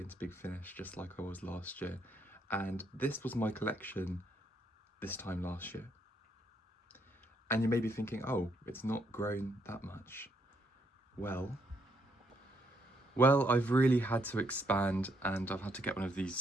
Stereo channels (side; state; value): both; normal; correlation 0.74